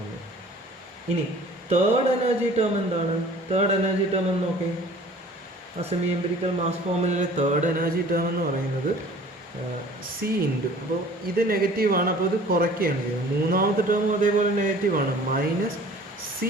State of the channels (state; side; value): normal; both; correlation 0.48